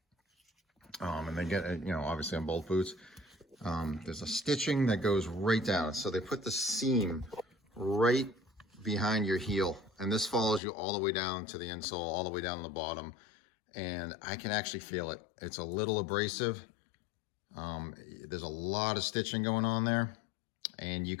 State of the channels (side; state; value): right; drops out; at 10.6 s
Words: And they get, obviously on both boots, there's a stitching that goes right down. So they put the seam right behind your heel, and this follows you all the way down to the insole, all the way down to the bottom. And I can actually feel it. It's a little abrasive. There's a lot of stitching going on there, and you